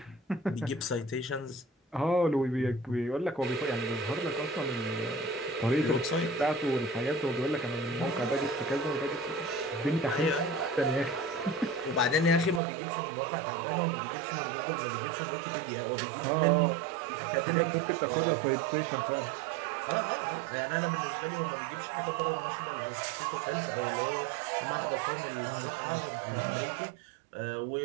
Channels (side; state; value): left; drops out; at 12.6 s